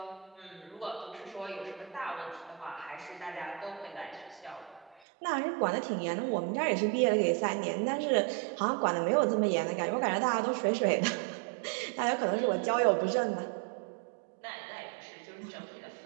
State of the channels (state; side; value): drops out; left; at 5.0 s